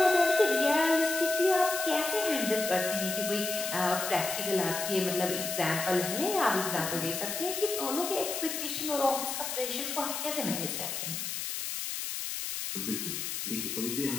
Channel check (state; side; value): noise; left; hiss, 4 dB below the sound